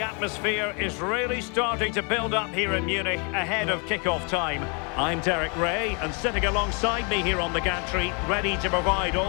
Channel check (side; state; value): right; quieter; 35.1 dB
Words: atmosphere is really starting to build up here in Munich ahead of kick-off time. I'm Derek Ray, and sitting alongside me here on the gantry, ready to provide